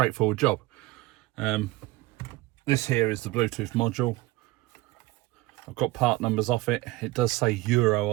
job. This here is the Bluetooth module. I've got part numbers off it. It does say Euro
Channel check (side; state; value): left; quieter; 19.4 dB